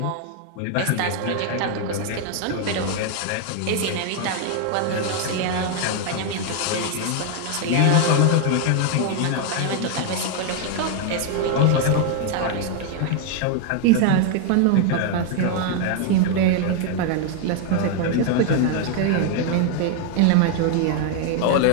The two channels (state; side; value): different; both; correlation 0.00